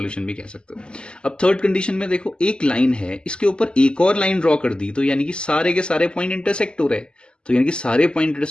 भी कह सकते हो। अब थर्ड कंडीशन में देखो एक लाइन है, इसके ऊपर एक और लाइन ड्रॉ कर दी, तो यानी कि सारे के सारे पॉइंट इंटरसेक्ट हो रहे हैं, तो यानी कि सारे पॉइंट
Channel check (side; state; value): right; late; 0.049 ms